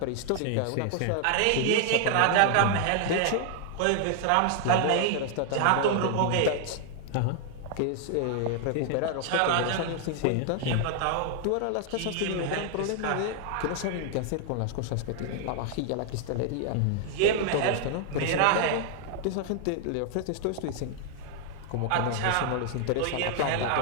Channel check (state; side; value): different; both; correlation 0.00